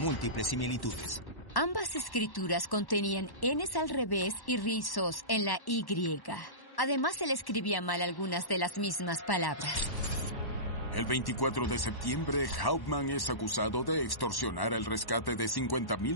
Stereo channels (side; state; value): right; late; 1.1 ms